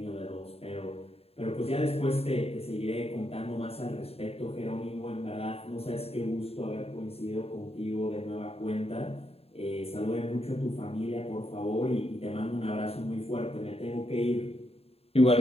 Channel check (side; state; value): right; late; 0.29 ms